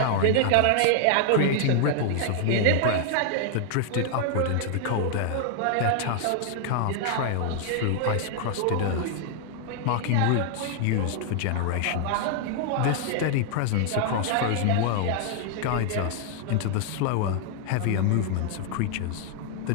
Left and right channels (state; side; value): different; both; correlation 0.00